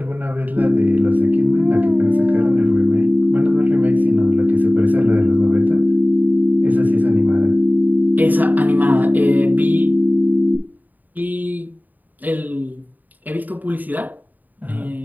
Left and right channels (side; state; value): left; late; 0.085 ms